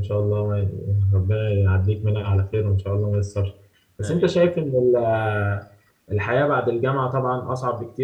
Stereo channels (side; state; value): both; identical; correlation 1.00